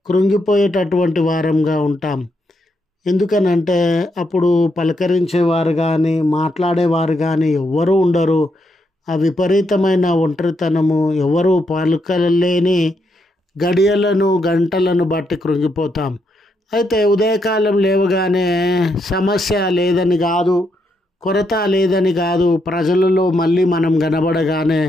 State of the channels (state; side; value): normal; both; correlation 0.79